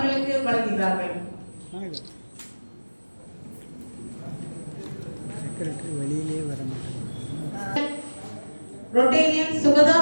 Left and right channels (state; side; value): inverted; both; correlation -1.00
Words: வழங்குகிறார்கள். செக்ரட்டரி வெளியிலே வர மாட்டாங்க. Rotarian Sugada